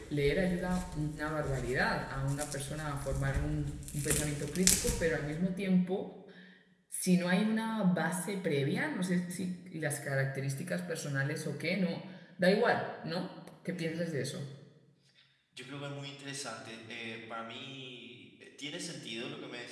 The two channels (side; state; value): both; identical; correlation 1.00